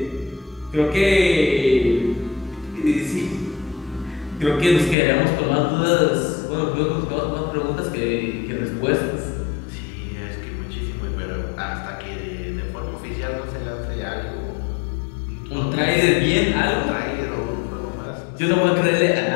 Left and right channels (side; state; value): right; drops out; at 5.0 s